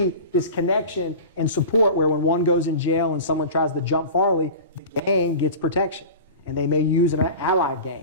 this connection and support where when one goes in jail and someone tries to jump Farley, the gang gets protection. And they may use an allied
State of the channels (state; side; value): inverted; both; correlation -0.34